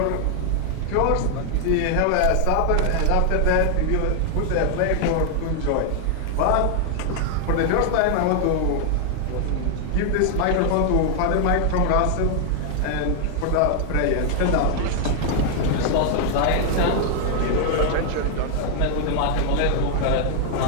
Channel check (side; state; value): both; different; correlation 0.00